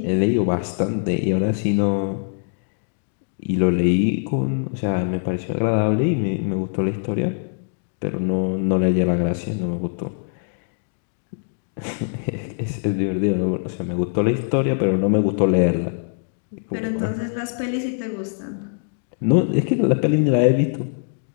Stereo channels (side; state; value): right; silent; digital silence